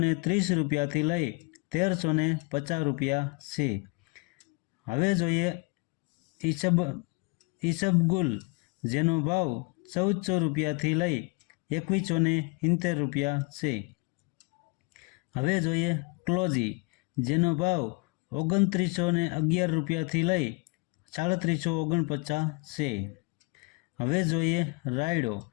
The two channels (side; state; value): right; quieter; 28.5 dB